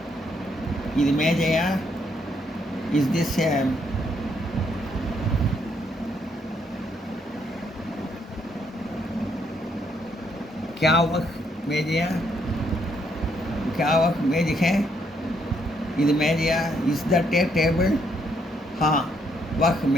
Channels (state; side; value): normal; both; correlation 0.73